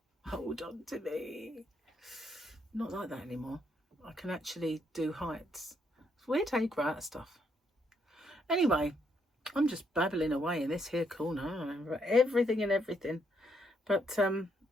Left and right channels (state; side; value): normal; both; correlation 0.75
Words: hold on to me. not like that anymore. I can actually do heights. It's weird how you grow out of stuff. Anyway, I'm just babbling away in this here corner. I remember everything and everything. But